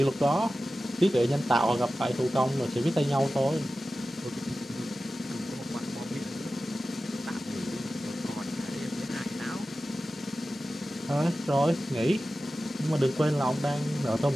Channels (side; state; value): both; normal; correlation 0.94